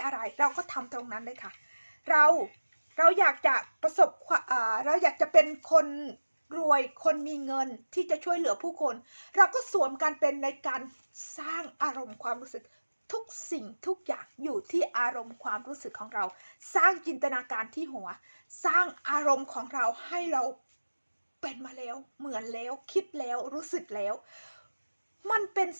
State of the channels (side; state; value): both; inverted; correlation -1.00